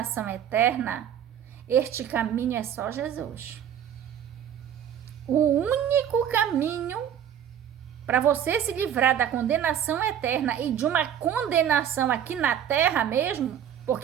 eterna, este caminho é só Jesus. O único caminho para você se livrar da condenação eterna e de uma condenação aqui na terra mesmo,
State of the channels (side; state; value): left; quieter; 9.5 dB